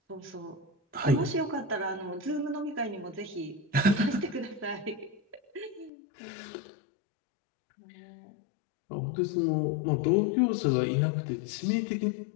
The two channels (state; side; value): drops out; right; at 5.9 s